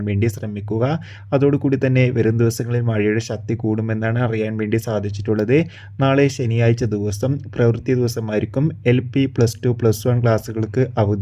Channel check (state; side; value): identical; both; correlation 1.00